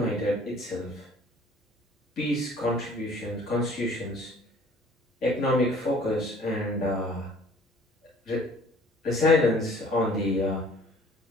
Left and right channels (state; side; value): normal; both; correlation 0.54